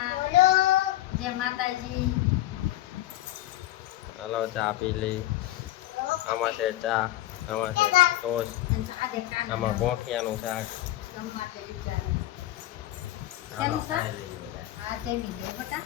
જય માતાજી. હાલો ચા પી લઈ. આમાં છે ચા, આમાં છે ટોસ્ટ, આમાં ગોઠિયાનું શાક. હાલો ખાઈ લઈએ બધા.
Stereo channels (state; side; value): quieter; right; 15.3 dB